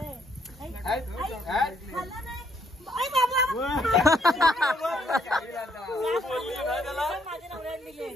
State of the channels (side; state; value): both; normal; correlation 0.70